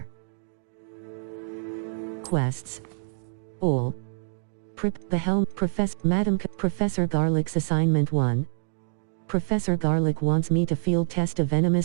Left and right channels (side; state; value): left; silent; digital silence